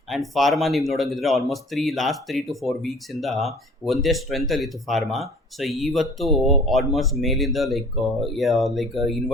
ಆ್ಯಂಡ್ ಫಾರ್ಮಾ ನೀವು ನೋಡೋಂಗಿದ್ರೆ ಆಲ್ಮೋಸ್ಟ್ ಲಾಸ್ಟ್ 3 to 4 ವೀಕ್ಸಿಂದ ಒಂದೇ ಸ್ಟ್ರೆಂತಲ್ಲಿತ್ತು ಫಾರ್ಮಾ. ಸೊ ಇವತ್ತು ಆಲ್ಮೋಸ್ಟ್ ಮೇಲಿಂದ ಲೈಕ್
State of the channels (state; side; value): normal; both; correlation 0.49